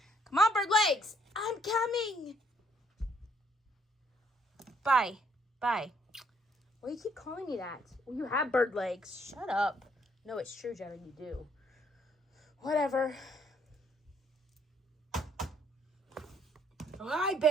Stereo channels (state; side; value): normal; both; correlation 0.67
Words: Come on, bird legs. I'm coming. Bye. Bye. Why do you keep calling me that? Well, you have bird legs. Shut up. No, it's true, Jenna, you do. Whatever. Oh, hi,